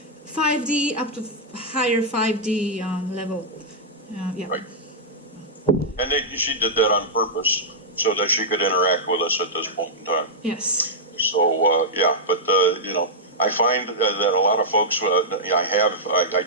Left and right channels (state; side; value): normal; both; correlation -0.09